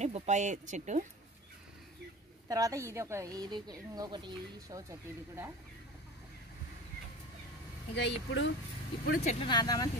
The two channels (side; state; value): both; normal; correlation 0.34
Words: బొప్పాయి చెట్టు. తర్వాత ఇది ఇంకొకటి షో చెట్టు. ఇది కూడా ఇక ఇప్పుడు చెట్లు నాటుదామని